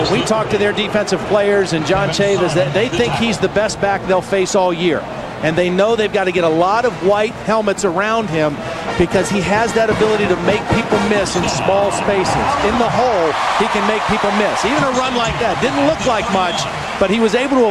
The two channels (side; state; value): both; identical; correlation 1.00